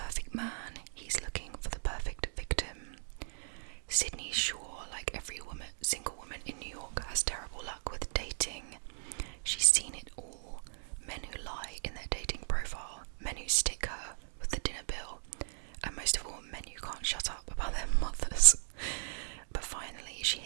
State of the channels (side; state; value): left; silent; digital silence